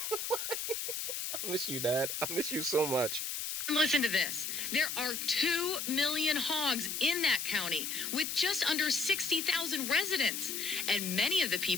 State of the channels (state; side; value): noise; left; hiss, 3 dB below the sound